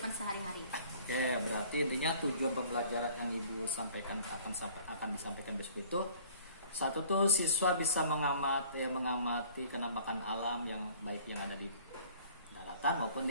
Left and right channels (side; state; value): both; inverted; correlation -0.52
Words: sehari-hari. Oke, berarti intinya tujuan pembelajaran yang Ibu sampaikan akan disampaikan besok itu, satu tuh siswa bisa mengamati kenampakan alam yang baik yang ada di daratan maupun